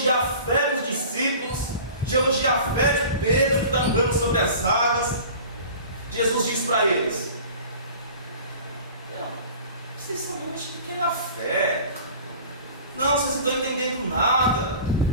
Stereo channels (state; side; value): inverted; both; correlation -0.42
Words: a fé dos discípulos, de elogiar a fé de Pedro que está andando sobre as águas, Jesus diz para eles: vocês são homens de pequena fé. Não, vocês não estão entendendo nada.